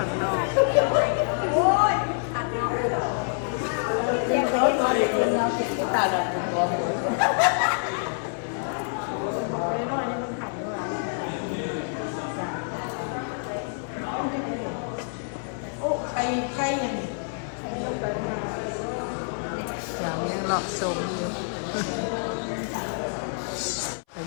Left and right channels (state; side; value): silent; right; 60 dB below the other